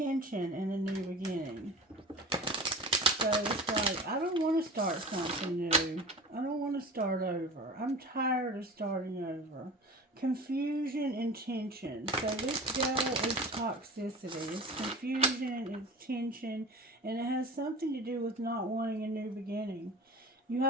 and a new beginning. So it's like, I don't want to start something new. I don't want to start over. I'm tired of starting over. Confusion and tension. So this devil is toxicity. It's confusion, it's tension, and it has something to do with not wanting a new beginning. You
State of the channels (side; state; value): both; normal; correlation 0.35